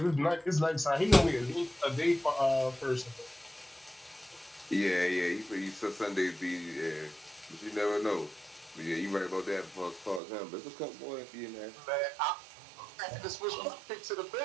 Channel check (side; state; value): left; drops out; at 10.2 s